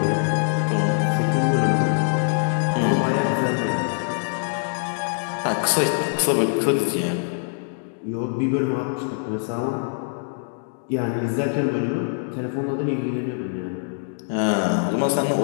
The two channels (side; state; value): right; silent; digital silence